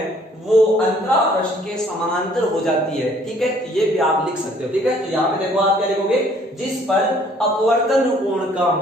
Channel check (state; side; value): normal; both; correlation 0.59